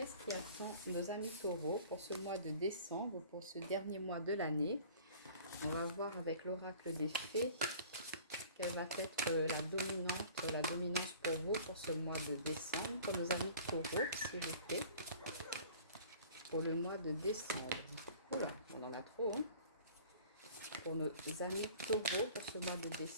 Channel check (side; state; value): both; inverted; correlation -0.47